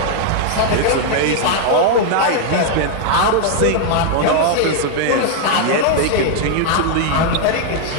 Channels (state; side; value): different; both; correlation 0.00